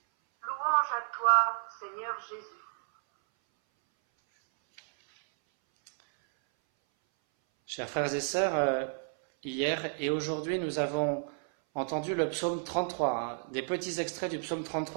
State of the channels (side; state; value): left; silent; 57 dB below the other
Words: Louange à toi, Seigneur Jésus. Chers frères et sœurs, hier et aujourd'hui, nous avons entendu le psaume 33, des petits extraits du psaume